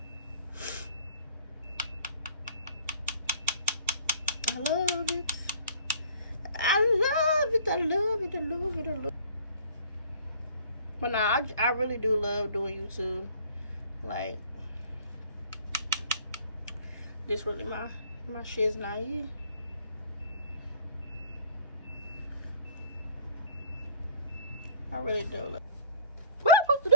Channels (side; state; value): both; inverted; correlation -0.51